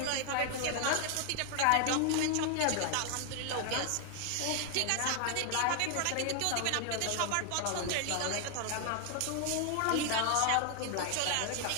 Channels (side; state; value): both; different; correlation 0.00